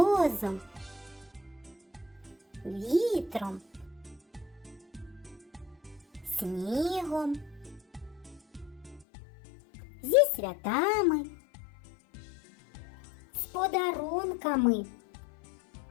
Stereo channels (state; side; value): drops out; right; at 9.1 s